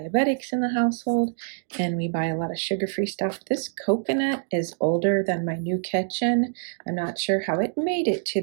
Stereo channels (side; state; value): left; silent; digital silence